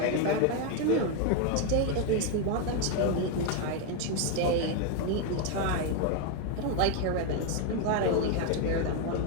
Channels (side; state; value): both; different; correlation 0.01